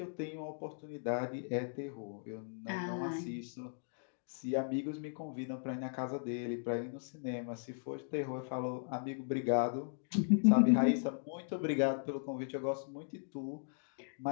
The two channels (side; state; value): right; silent; digital silence